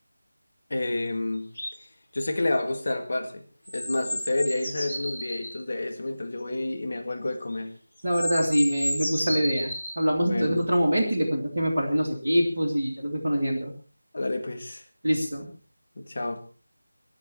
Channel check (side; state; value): both; inverted; correlation -0.96